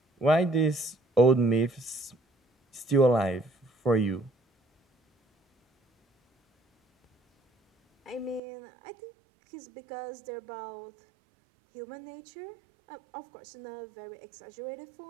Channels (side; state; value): left; drops out; at 8.4 s